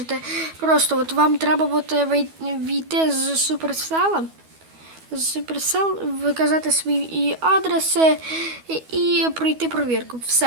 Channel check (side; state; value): left; late; 12 ms